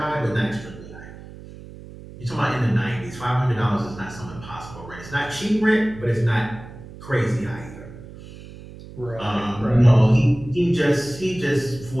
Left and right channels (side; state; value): right; noise; hum, 16 dB below the sound